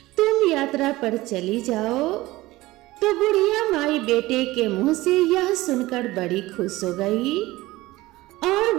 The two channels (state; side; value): quieter; left; 18.7 dB